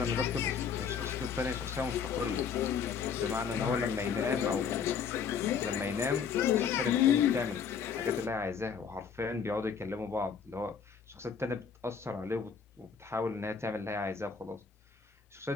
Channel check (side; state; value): right; quieter; 6.7 dB